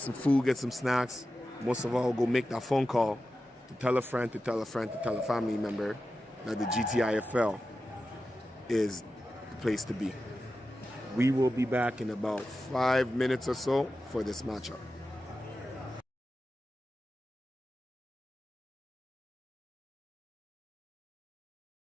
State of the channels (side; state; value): both; normal; correlation 0.92